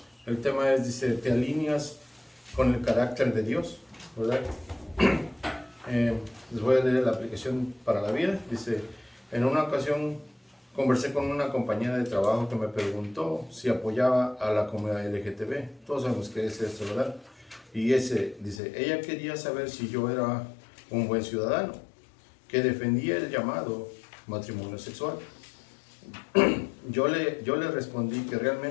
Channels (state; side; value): drops out; right; at 18.6 s